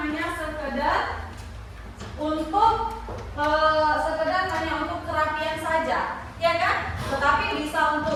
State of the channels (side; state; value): both; identical; correlation 1.00